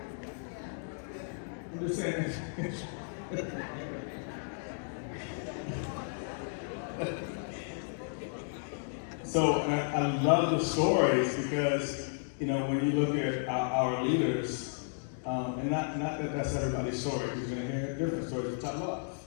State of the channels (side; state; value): right; silent; digital silence